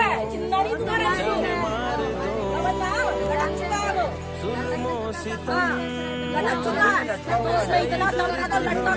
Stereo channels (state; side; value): identical; both; correlation 1.00